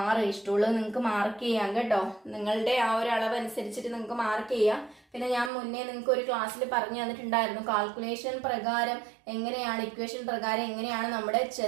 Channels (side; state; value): left; drops out; at 5.5 s